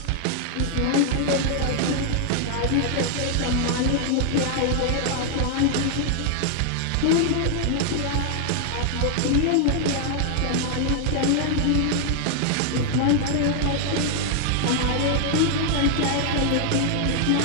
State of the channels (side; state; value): both; different; correlation 0.00